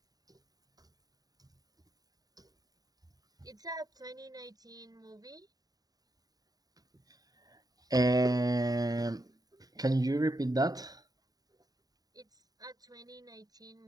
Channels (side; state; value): left; late; 0.18 ms